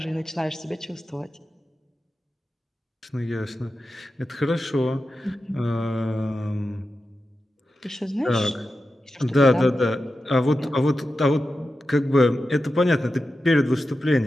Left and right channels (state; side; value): normal; both; correlation 0.91